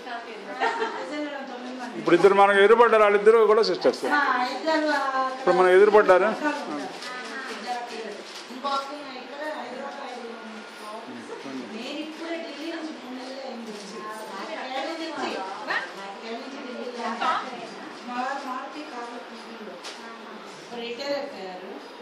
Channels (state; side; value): identical; both; correlation 1.00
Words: ఇప్పుడు ఇద్దరు మనకు ఎదురుపడ్డారు, వాళ్ళిద్దరు కూడా సిస్టర్స్. ఇప్పుడు మనం ఎదురుపడ్డారు.